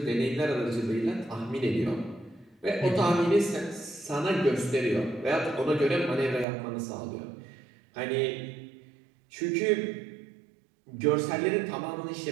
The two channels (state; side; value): drops out; left; at 6.5 s